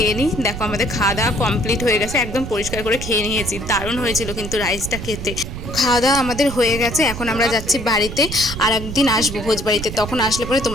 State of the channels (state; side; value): noise; right; rumble, 8 dB below the sound